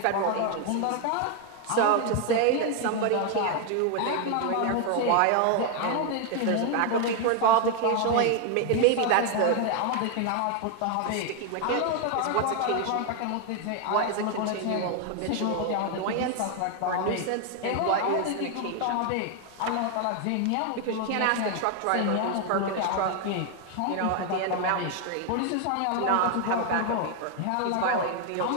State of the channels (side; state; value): both; different; correlation 0.01